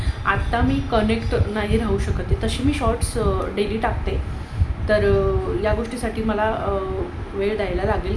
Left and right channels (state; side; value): identical; both; correlation 1.00